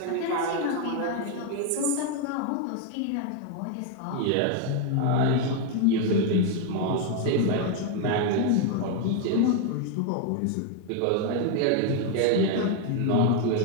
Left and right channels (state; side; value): different; both; correlation 0.01